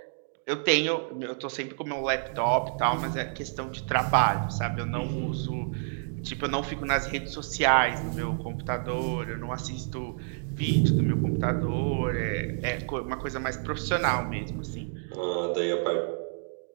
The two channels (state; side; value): silent; left; digital silence